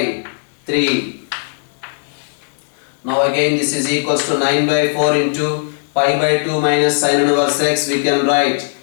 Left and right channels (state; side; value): silent; right; digital silence